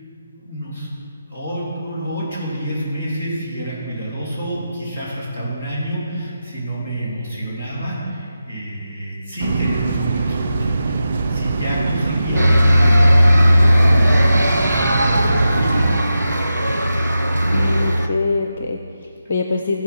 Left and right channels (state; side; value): inverted; both; correlation -0.90